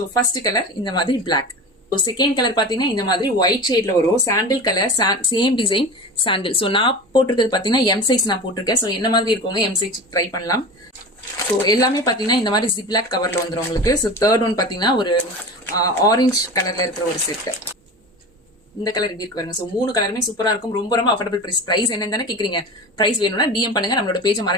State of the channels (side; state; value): both; normal; correlation 0.31